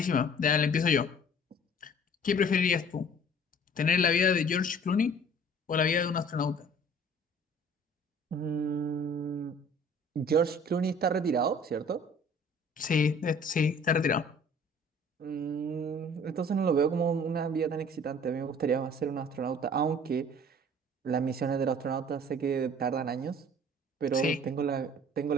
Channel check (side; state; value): both; normal; correlation 0.50